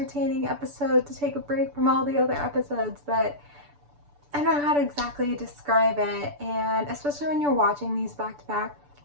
episode to take a break from all the other episodes, but I don't know how to exactly describe it. And especially when you're watching these back to back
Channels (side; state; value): left; late; 6.9 ms